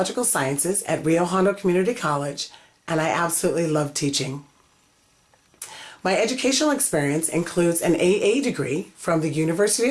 sciences at Rio Hondo Community College, and I absolutely love teaching. My educational experience includes an AA degree from the University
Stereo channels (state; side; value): identical; both; correlation 1.00